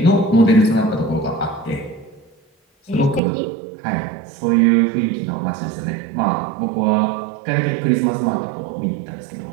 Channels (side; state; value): left; drops out; at 3.2 s